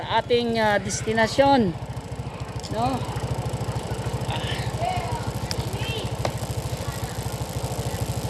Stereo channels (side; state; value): both; identical; correlation 1.00